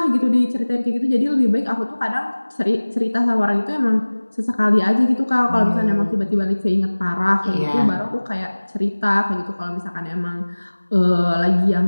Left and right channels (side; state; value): both; inverted; correlation -1.00